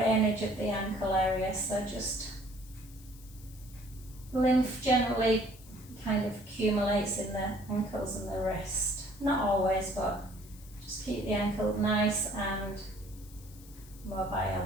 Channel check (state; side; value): noise; left; hiss, 22 dB below the sound